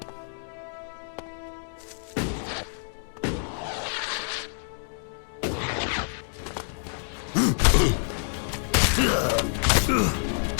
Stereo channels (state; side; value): silent; right; 60 dB below the other